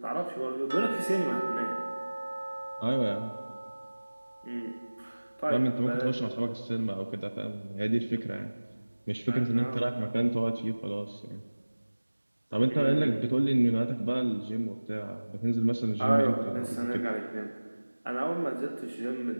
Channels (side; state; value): both; inverted; correlation -1.00